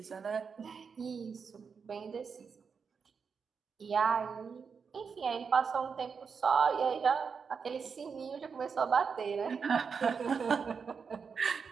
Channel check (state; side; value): quieter; left; 5.8 dB